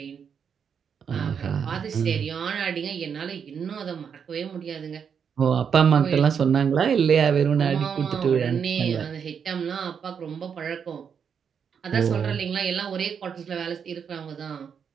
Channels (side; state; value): left; quieter; 7.1 dB